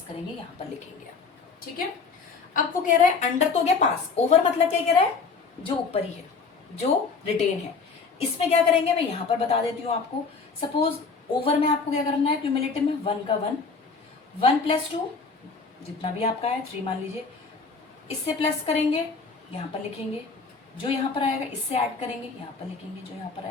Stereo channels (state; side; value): quieter; right; 4.8 dB